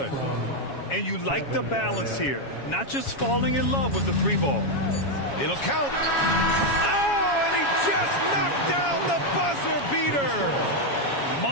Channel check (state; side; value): late; right; 7.2 ms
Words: And you like the balance here, not just falling in love with the 3-ball. It'll count. Oh, and he just knocked down the buzzer beater.